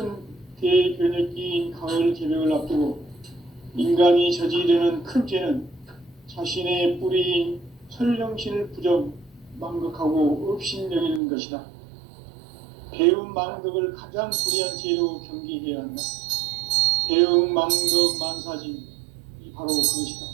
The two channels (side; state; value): left; drops out; at 11.2 s